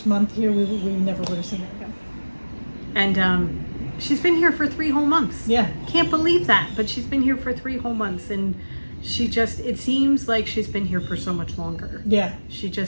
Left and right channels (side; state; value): both; inverted; correlation -1.00